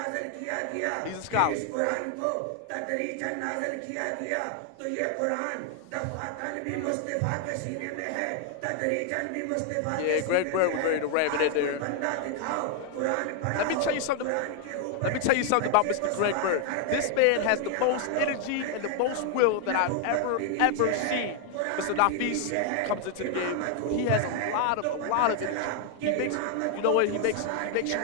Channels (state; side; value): different; both; correlation 0.00